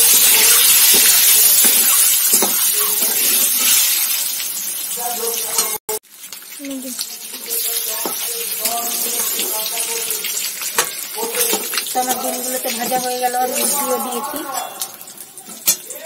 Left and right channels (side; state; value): both; identical; correlation 1.00